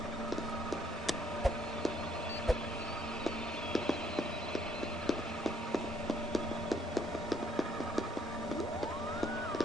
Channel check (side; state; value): both; normal; correlation 0.67